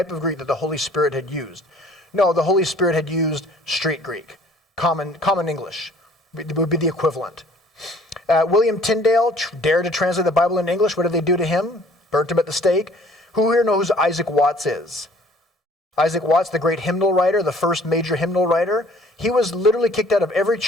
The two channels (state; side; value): normal; both; correlation 0.55